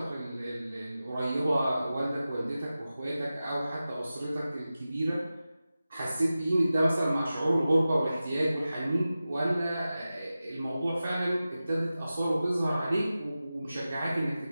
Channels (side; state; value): both; inverted; correlation -0.95